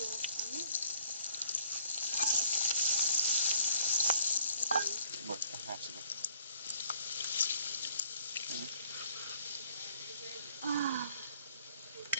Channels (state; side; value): inverted; both; correlation -0.60